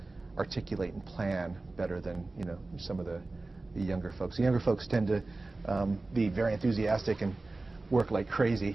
articulate and plan better than some of the younger folks. The younger folks tend to be very enthusiastic and work like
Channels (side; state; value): left; quieter; 3.2 dB